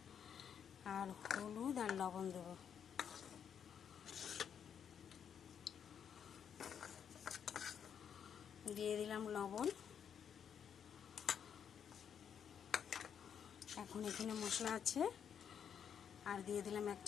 আর হলুদ আর লবণ দেব। দিয়ে দিলাম লবণ। এখন এখানে মশলা আছে, আর দিয়ে দিলাম 1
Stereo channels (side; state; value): right; quieter; 8.0 dB